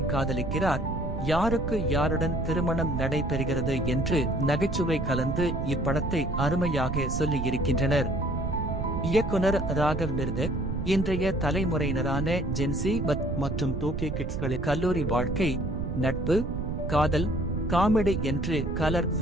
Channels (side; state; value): right; noise; rumble, 3 dB below the sound